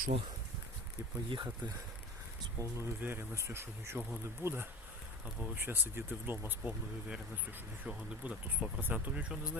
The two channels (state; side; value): normal; both; correlation 0.36